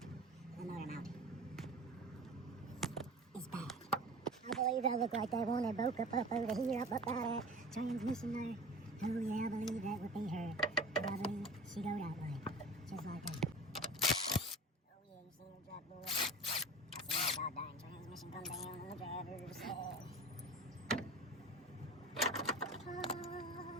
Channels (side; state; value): both; normal; correlation 0.37